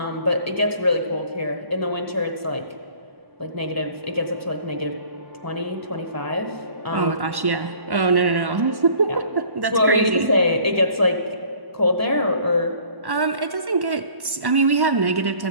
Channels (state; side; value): late; left; 1.1 ms